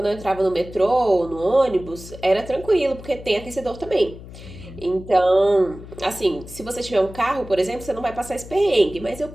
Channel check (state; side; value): noise; left; hum, 15 dB below the sound